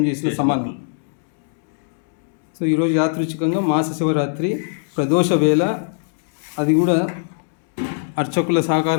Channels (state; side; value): silent; right; digital silence